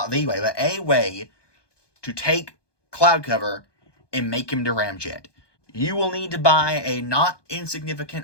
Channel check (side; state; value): right; late; 1.2 ms